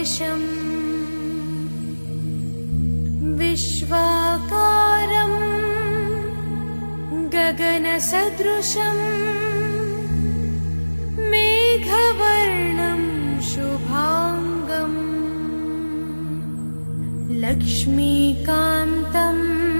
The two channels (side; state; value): both; inverted; correlation -1.00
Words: विश्वाकारं गगनसदृशं मेघवर्णं शुभांगं लक्ष्मीकान्तं